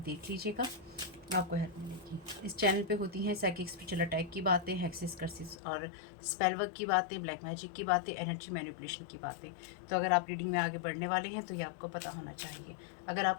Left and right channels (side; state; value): right; drops out; at 5.6 s